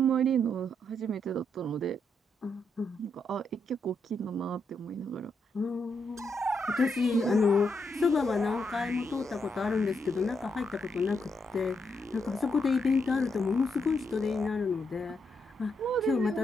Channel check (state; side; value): normal; both; correlation 0.79